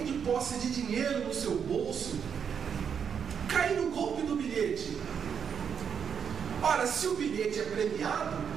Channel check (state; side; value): quieter; left; 7.2 dB